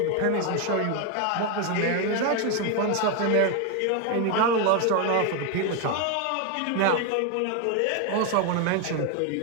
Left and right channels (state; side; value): different; both; correlation 0.01